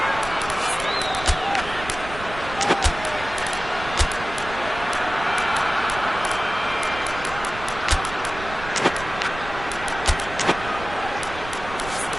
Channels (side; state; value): right; noise; rumble, 12 dB below the sound